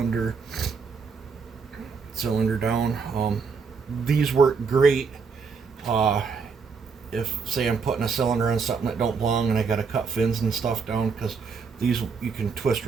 cylinder down. These work great if, say, I'm putting a cylinder on something that don't belong and I gotta cut fins and stuff down, because these you can twist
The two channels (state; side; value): quieter; left; 5.3 dB